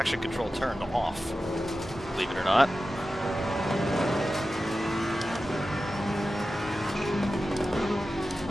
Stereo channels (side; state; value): both; normal; correlation 0.93